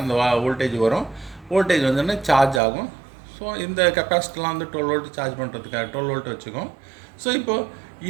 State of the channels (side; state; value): left; drops out; at 2.6 s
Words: அந்த வோல்டேஜ் வரும். வோல்டேஜ் வந்தோடனே சார்ஜ் ஆகும். ஸோ இந்த கெப்பாசிட்டிலாம் வந்து 12 வோல்ட் சார்ஜ் பண்ணுறதுக்காக 12 வோல்ட் வச்சுக்கோம். ஸோ இப்போது